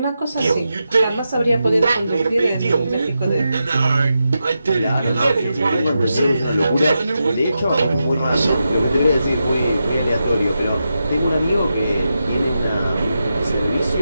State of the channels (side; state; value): both; inverted; correlation -0.88